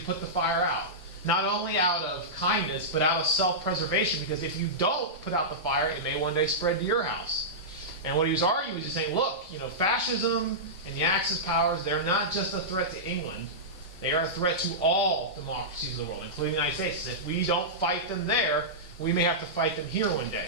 put the fire out. Not only out of kindness, but out of self-preservation, because if you don't put out the fire, it may one day spread to your house. And what he was arguing was just saying, look, fascism and the Axis powers, they're not just a threat to England, they are a threat to all democracies of the world, including the United States. If we don't fight them there, we may have to fight them here one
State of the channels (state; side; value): normal; both; correlation -0.14